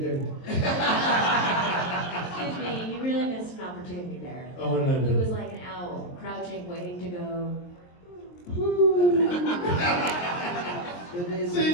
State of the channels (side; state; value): right; late; 23 ms